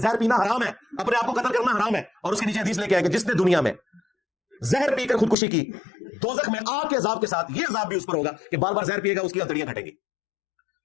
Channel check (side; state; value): right; drops out; at 5.4 s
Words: पीना हराम है, अपने आप को कत्ल करना हराम है। और उसके नीचे हदीस लेके आए कि जिसने दुनिया में जहर पीकर खुदकुशी की, दोजख में आग के अजाब के साथ ये अजाब भी उस पर होगा कि बार बार जहर पिएगा, उसकी हथेलियां घटेंगी।